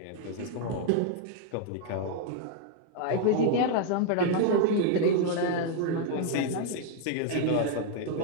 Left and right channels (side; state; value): both; different; correlation 0.00